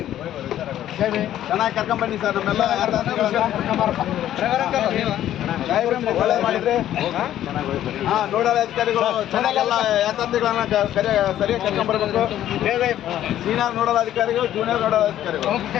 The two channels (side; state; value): right; quieter; 12.1 dB